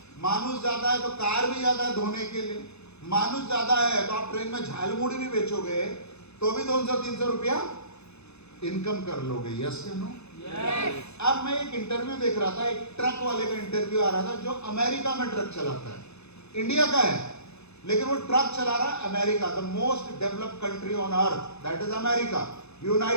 मानुष ज्यादा है तो कार भी ज्यादा है धोने के लिए, मानुष ज्यादा है तो आप ट्रेन में झालमुड़ी भी बेचोगे तो भी 200-300 रुपया इनकम कर लोगे। यस या नो? अब मैं एक इंटरव्यू देख रहा था, एक ट्रक वाले का इंटरव्यू आ रहा था जो अमेरिका में ट्रक चलाता है, इंडिया का है लेकिन वो ट्रक चला रहा है America, the most developed country on earth, that is America,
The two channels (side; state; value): right; late; 0.80 ms